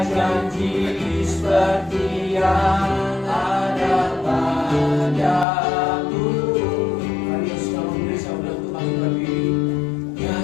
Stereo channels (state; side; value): drops out; right; at 5.5 s